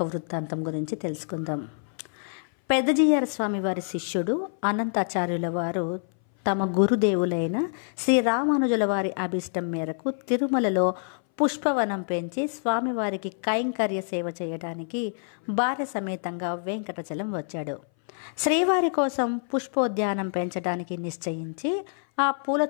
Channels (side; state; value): right; silent; 59 dB below the other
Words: వృత్తాంతం గురించి తెలుసుకుందాం. పెద్దజీయర స్వామి వారి శిష్యుడు అనంతాచార్యుల వారు తమ గురుదేవులైన శ్రీ రామానుజుల వారి అభిష్టం మేరకు తిరుమలలో పుష్పవనం పెంచి స్వామివారికి కైంకర్య సేవ చేయడానికి భార్య సమేతంగా వెంకటాచలం వచ్చాడు. శ్రీవారి కోసం పుష్పోద్యానం పెంచడానికి నిశ్చయించి ఆ పూల